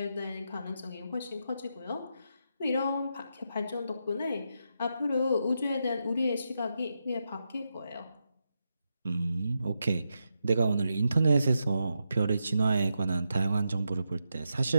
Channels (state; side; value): inverted; both; correlation -0.85